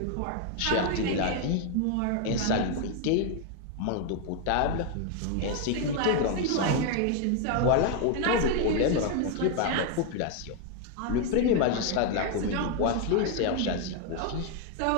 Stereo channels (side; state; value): both; different; correlation 0.00